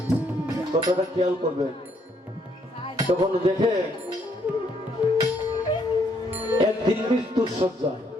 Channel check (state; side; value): normal; both; correlation 0.70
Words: কথাটা খেয়াল করবেন। তখন দেখে একদিন মৃত্যুর শয্যায়